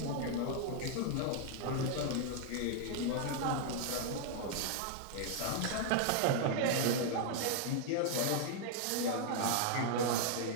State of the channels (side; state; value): both; different; correlation 0.00